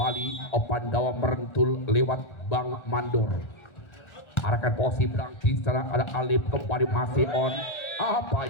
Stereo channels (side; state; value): right; late; 1.4 ms